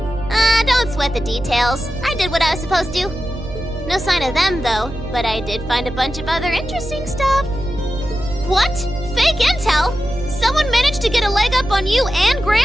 Don't sweat the details. I did what I was supposed to. No sign of them, though, but I did find a bunch of other interesting stuff. What? Fake intel? Someone managed to get a leg up on you and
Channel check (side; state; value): right; noise; hum, 11 dB below the sound